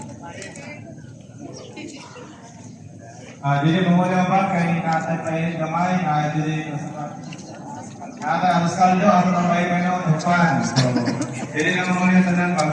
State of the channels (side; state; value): both; identical; correlation 1.00